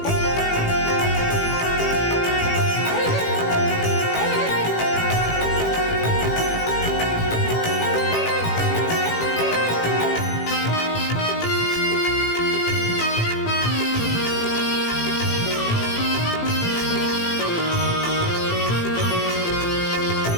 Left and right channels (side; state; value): right; late; 18 ms